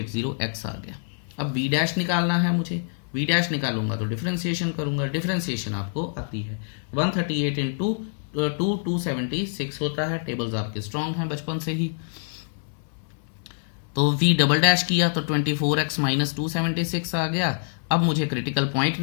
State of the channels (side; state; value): right; silent; digital silence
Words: आ गया। अब v डैश निकालना है मुझे, v डैश निकालूंगा तो डिफरेंशिएशन करूंगा, डिफरेंशिएशन आपको आती है 138 इंटू 276 होता है। टेबल्स आपके स्ट्रॉन्ग हैं बचपन से ही। तो v डबल डैश किया तो 24x - 276 आ गया। अब मुझे क्रिटिकल पॉइंट